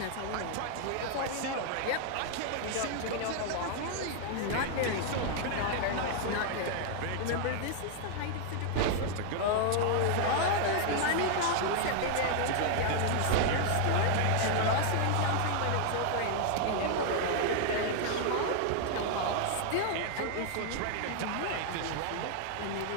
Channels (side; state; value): both; different; correlation 0.00